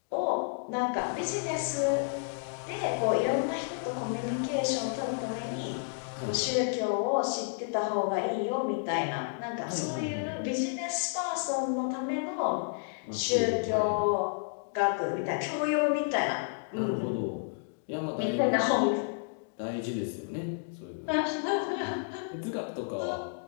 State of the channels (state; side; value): silent; right; digital silence